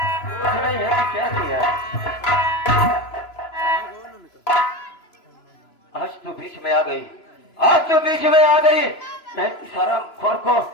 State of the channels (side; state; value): right; late; 3.0 ms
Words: नहीं है। क्या किया? आज तो बीच में आ गई, आज तो बीच में आ गई। मैं सारा खोर को